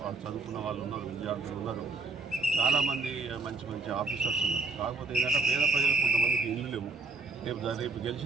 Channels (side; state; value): left; quieter; 3.7 dB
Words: వాళ్ళు చదువుకున్న వాళ్ళు ఉన్నారు, విద్యార్థులు ఉన్నారు, చాలామంది మంచి ఆఫీసర్స్ ఉన్నారు. కాకపోతే ఏంటంటే పేద ప్రజలకు కొంతమందికి ఇల్లు లేవు. రేపు